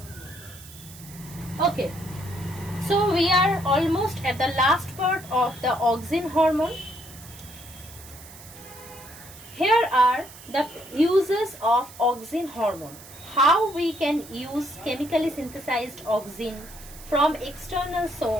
Okay. So we are almost at the last part of the auxin hormone. Here are the uses of auxin hormone. How we can use chemically synthesized auxin from external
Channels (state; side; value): noise; right; hiss, 18 dB below the sound